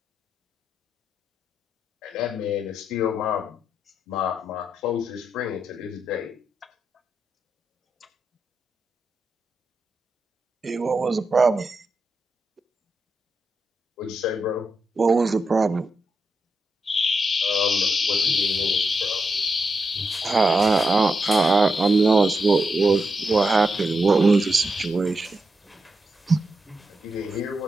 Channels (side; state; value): both; normal; correlation 0.85